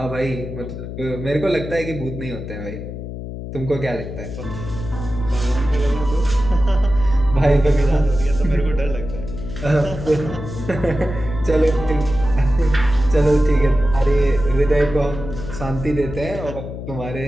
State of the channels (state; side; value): noise; left; hum, 9 dB below the sound